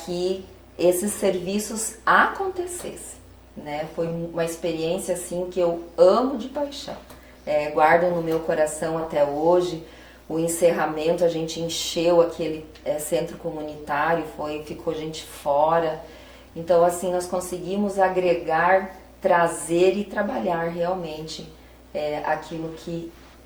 esses serviços acontecessem, né? Foi uma experiência assim que eu amo de paixão, guardo no meu coração até hoje. O encerramento, a gente encheu aquele centro comunitário, ficou gente fora. Então assim, nós conseguimos agregar, trazer e trabalhar realmente aquilo que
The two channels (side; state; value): both; identical; correlation 1.00